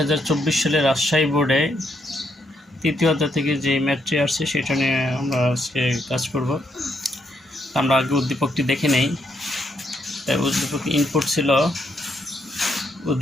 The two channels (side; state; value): both; normal; correlation 0.76